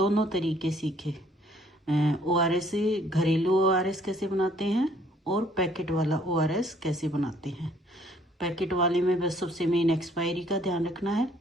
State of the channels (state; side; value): normal; both; correlation 0.62